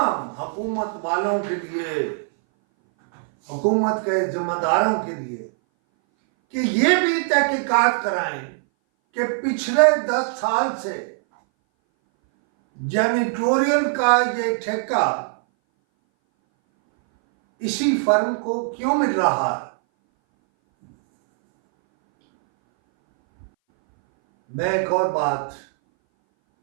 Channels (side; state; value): left; silent; 60 dB below the other